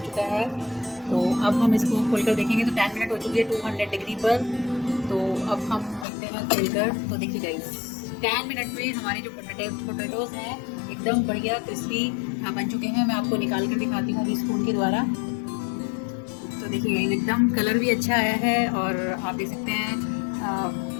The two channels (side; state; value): right; drops out; at 6.1 s